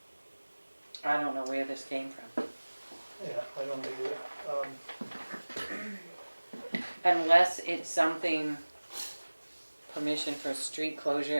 I don't know where this came from. Yeah, I don't either. Unless it's something, permission for street closure,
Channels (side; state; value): both; inverted; correlation -1.00